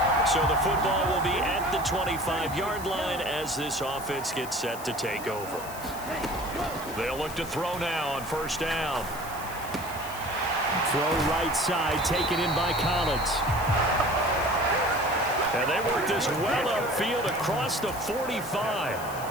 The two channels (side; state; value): left; noise; hiss, 14 dB below the sound